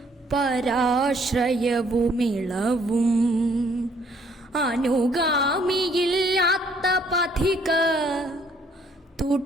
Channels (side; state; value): both; normal; correlation 0.64